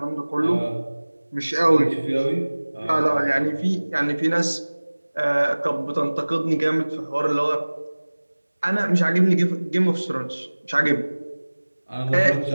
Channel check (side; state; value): both; inverted; correlation -1.00